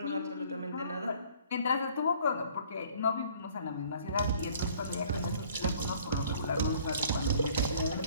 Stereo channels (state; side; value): inverted; both; correlation -0.55